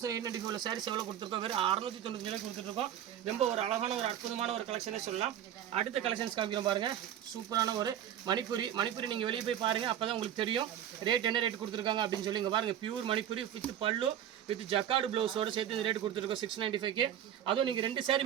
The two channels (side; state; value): left; quieter; 10.5 dB